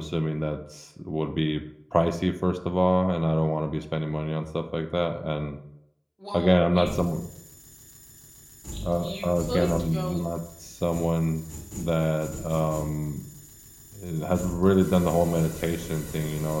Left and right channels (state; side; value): identical; both; correlation 1.00